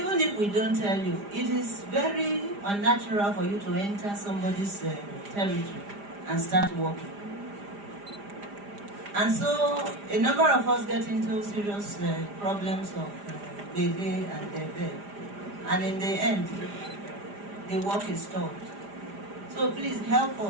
if we don't tell you, it is very unnatural for you to enter somebody's territory and start working. And so a number of us get into serious problems of Bebe and Debe. And in the end, the work is stopped. So please help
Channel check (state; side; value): late; left; 4.9 ms